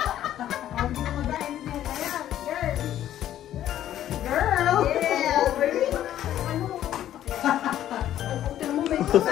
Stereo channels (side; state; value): right; quieter; 11.9 dB